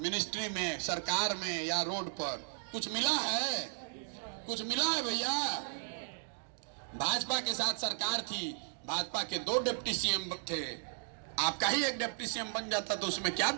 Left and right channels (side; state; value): left; silent; digital silence